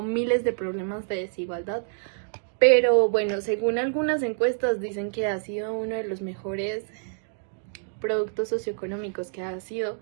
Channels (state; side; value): silent; left; digital silence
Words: miles de problemas de desigualdad, pero bueno, según algunas encuestas dicen que ha sido uno de los mejores productos socioeconómicos que ha sido,